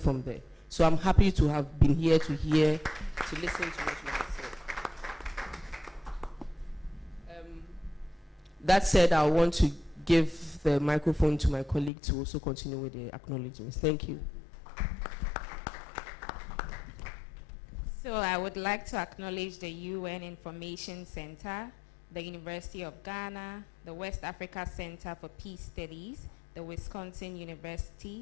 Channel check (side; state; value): right; drops out; at 11.9 s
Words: there. So I'm happy to have been here to listen to what you have said. That said, I want to give the microphone to my colleague to also continue with the acknowledgements. Thank you. So I would like to acknowledge the UN Information Center, the University of Ghana, the West Africa Center for Peace Studies, the Wisconsin